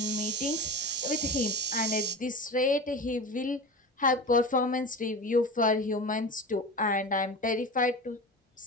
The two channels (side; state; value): both; normal; correlation 0.30